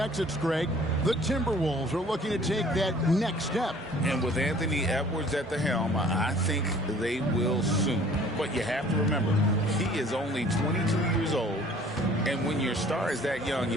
Greg, the Timberwolves are looking to take that next step. And with Anthony Edwards at the helm, I think they will soon. But you have to remember, he is only 22 years old. And when your star is that young,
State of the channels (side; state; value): both; normal; correlation 0.53